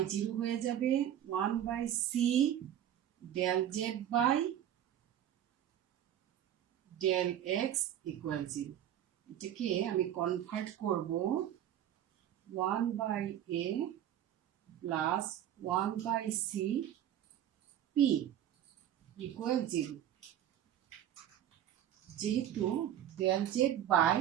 0 হয়ে যাবে 1 by c del z by del x equal 0. এটাকে আমি কনভার্ট করব 1 by a plus 1 by c p equal 0. যেহেতু del z by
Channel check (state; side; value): quieter; left; 11.0 dB